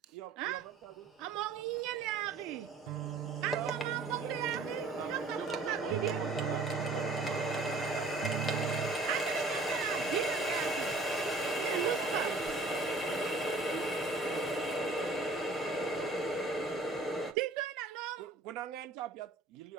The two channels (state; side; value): quieter; left; 3.3 dB